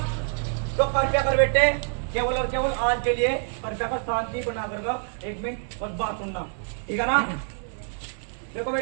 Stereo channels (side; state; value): left; silent; 61 dB below the other